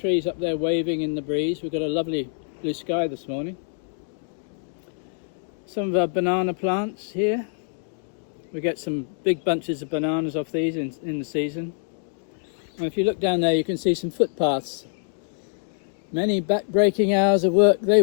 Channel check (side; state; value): right; silent; 62 dB below the other